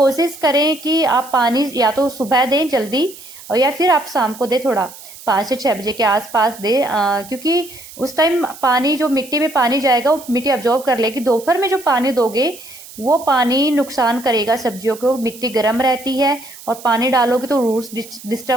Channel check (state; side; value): noise; right; hiss, 17 dB below the sound